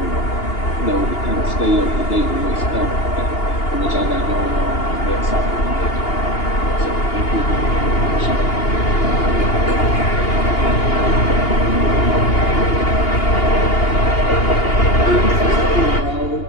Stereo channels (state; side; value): late; right; 2.8 ms